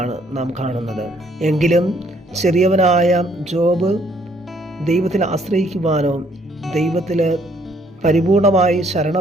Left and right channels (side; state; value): both; normal; correlation 0.66